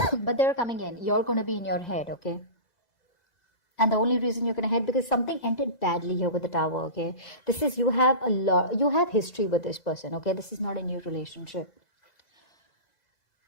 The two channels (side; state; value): right; late; 2.0 ms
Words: they're coming in. You're going to be in your head, okay? And the only reason you're going to head, because something ended badly here with the Tower, okay? This is, you have history with this person, okay? This is not a new relationship.